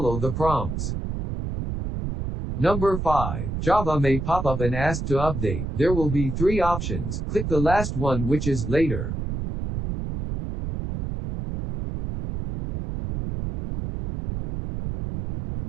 the prompts. Number 5. Java may pop up and ask to update. There will be 3 options. Click the last one, which is Later.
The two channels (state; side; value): noise; right; rumble, 4 dB below the sound